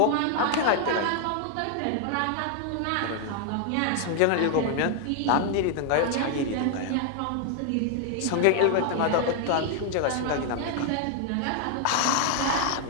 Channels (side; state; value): both; different; correlation 0.00